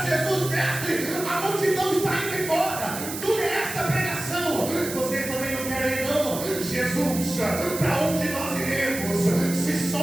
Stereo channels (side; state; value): right; noise; hiss, 8 dB below the sound